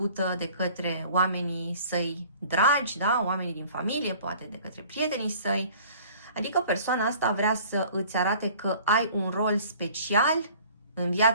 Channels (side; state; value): both; inverted; correlation -0.50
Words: de către oamenii săi dragi, da? Oamenii din familie, poate de către prietenii săi. Adică persoana asta vrea să îți arate că ai un rol special în